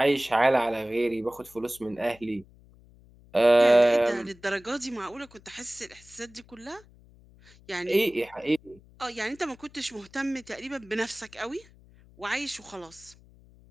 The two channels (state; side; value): noise; left; hum, 25 dB below the sound